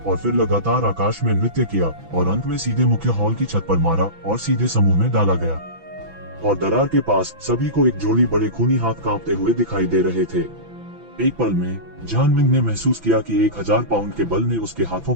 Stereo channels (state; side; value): late; left; 6.0 ms